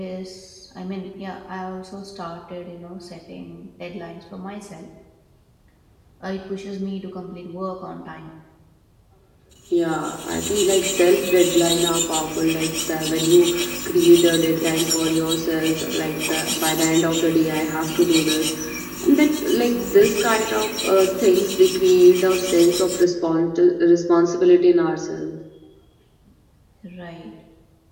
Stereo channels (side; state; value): both; identical; correlation 1.00